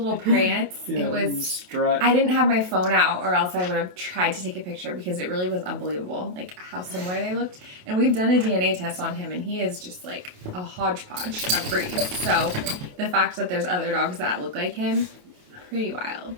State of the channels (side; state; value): left; late; 28 ms